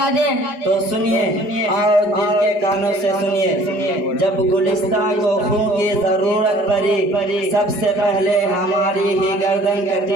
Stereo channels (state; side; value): late; left; 4.7 ms